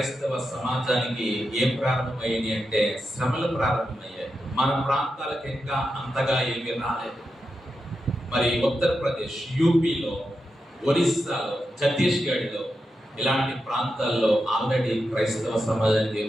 సమాజానికి ఏం ప్రారంభమయ్యాయి అంటే శ్రమలు ప్రారంభమయ్యాయి. మన ప్రాంతాలకు ఇంకా అంతగా ఏమీ రాలేదు. మరి ఉత్తరప్రదేశ్, యూపీలో, ఒరిస్సాలో, ఛత్తీస్గఢ్లో ఇలాంటి ప్రాంతాల్లో ఆల్రెడీ క్రైస్తవ సమాజానికి ఏం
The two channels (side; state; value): both; normal; correlation 0.88